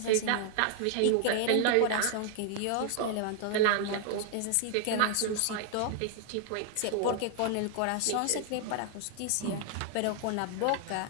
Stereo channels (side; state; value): both; different; correlation 0.00